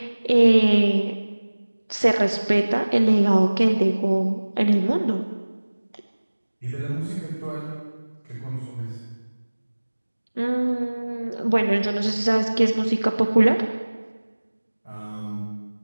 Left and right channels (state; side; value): inverted; both; correlation -1.00